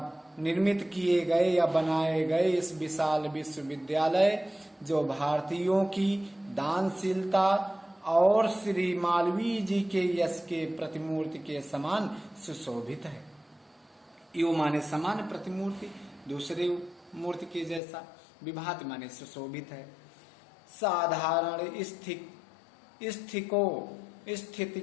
निर्मित किए गए या बनाए गए इस विशाल विश्वविद्यालय जो भारतीयों की दानशीलता और श्री मालवीय जी के यश के प्रतिमूर्ति के समान सुशोभित है। यो माने समान प्रतिमूर्ति, दूसरे मूर्ति के जैसा, विभात माने सुशोभित है। साधारण स्थिति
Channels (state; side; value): drops out; right; at 17.8 s